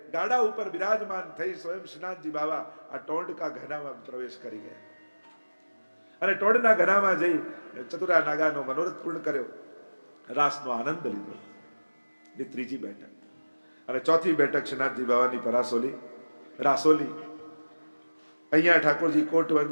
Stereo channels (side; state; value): both; inverted; correlation -1.00